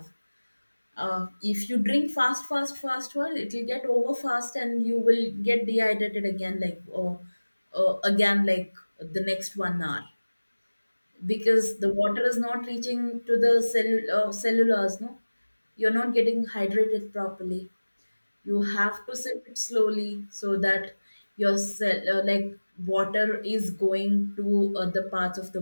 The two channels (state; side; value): inverted; both; correlation -1.00